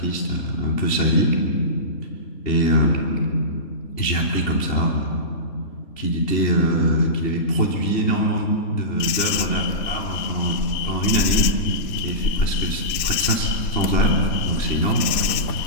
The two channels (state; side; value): late; right; 4.1 ms